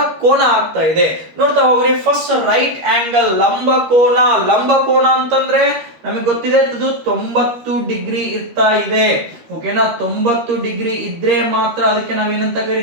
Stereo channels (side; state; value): left; late; 13 ms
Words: ಕೋನ ಆಗ್ತಾ ಇದೆ ನೋಡ್ತಾ ಹೋಗ್ರಿ. ಫಸ್ಟ್ ರೈಟ್ ಆಂಗಲ್, ಲಂಬ ಕೋನ. ಲಂಬ ಕೋನ ಅಂತಂದ್ರೆ ನಮಗೆ ಗೊತ್ತಿದೆ ಇದು 90 ಡಿಗ್ರಿ ಇರ್ತಾ ಇದೆ. ಓಕೆನಾ, 90 ಡಿಗ್ರಿ ಇದ್ರೆ ಮಾತ್ರ ಅದಕ್ಕೆ ನಾವೇನಂತ